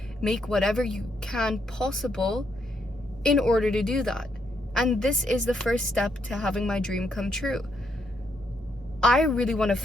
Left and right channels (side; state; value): both; normal; correlation 0.76